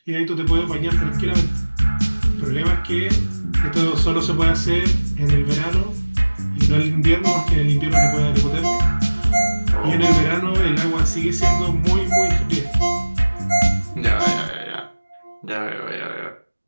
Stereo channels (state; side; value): inverted; both; correlation -1.00